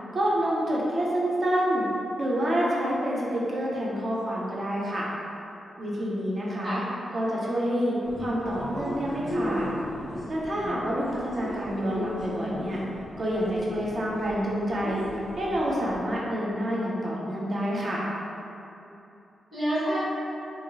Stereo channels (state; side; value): normal; both; correlation 0.86